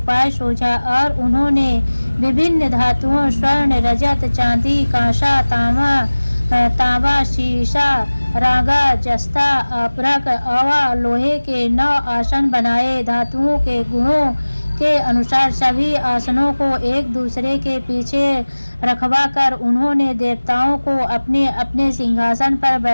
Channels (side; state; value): both; inverted; correlation -1.00